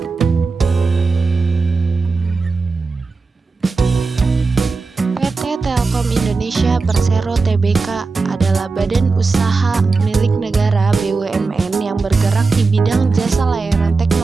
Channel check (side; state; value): left; quieter; 4.1 dB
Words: Telkom Indonesia Persero Tbk adalah badan usaha milik negara BUMN yang bergerak di bidang jasa layanan